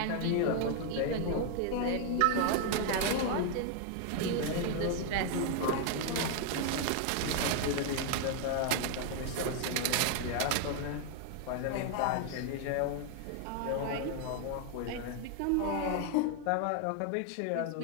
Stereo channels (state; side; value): different; both; correlation 0.00